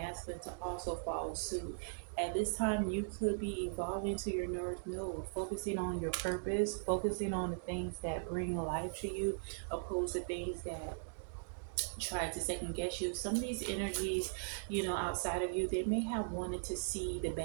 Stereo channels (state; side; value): silent; left; digital silence